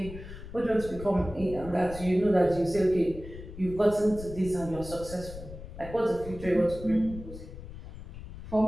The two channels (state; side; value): noise; left; rumble, 13 dB below the sound